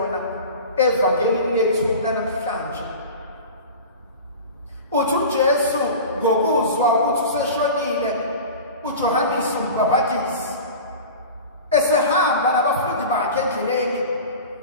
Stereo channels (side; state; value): both; inverted; correlation -0.34